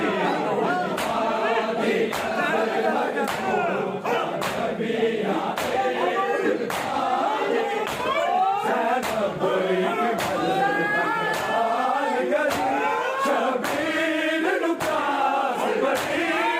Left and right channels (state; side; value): identical; both; correlation 1.00